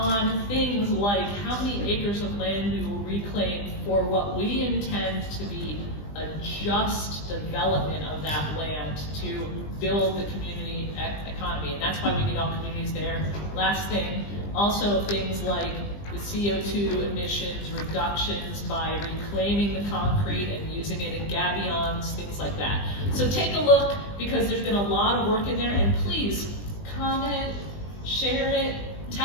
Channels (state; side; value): late; right; 20 ms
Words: things like how many acres of land we will reclaim for what we intend to be a just development of that land to build the community economy. And that's why we need all communities there. Last thing, also things like the CO2 emissions reductions by reclaiming the concrete and using it in gabions, things like that. So take a look, because there's been a lot of work in there, and please comment, share it,